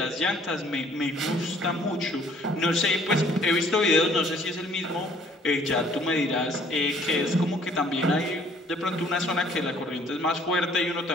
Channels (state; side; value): normal; both; correlation 0.59